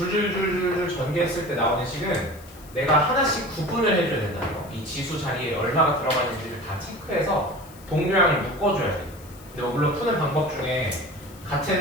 전개했을 때 나오는 식은 내가 하나씩 구분을 해줘야 된다는 거. 이 지수 자리에 얼마가 들어가는지를 다 체크해서 동류항을 묶어줘야 돼. 근데 뭐 물론 푸는 방법 중에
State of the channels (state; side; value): noise; left; hiss, 22 dB below the sound